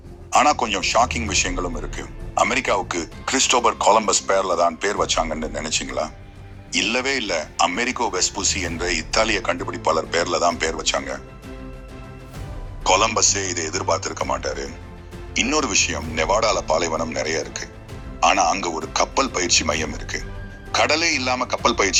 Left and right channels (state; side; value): identical; both; correlation 1.00